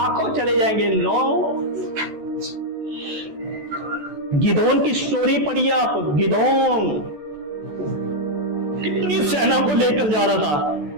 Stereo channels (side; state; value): left; late; 14 ms